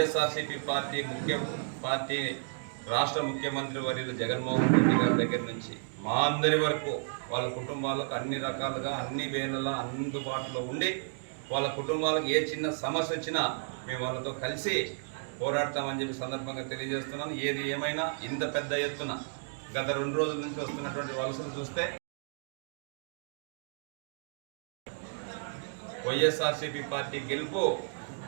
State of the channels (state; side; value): silent; left; digital silence